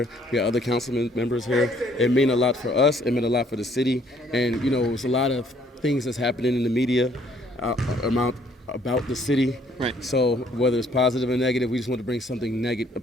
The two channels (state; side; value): normal; both; correlation 0.63